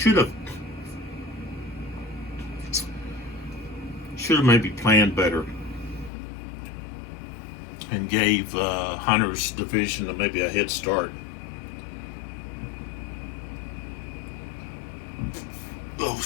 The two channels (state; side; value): drops out; right; at 6.1 s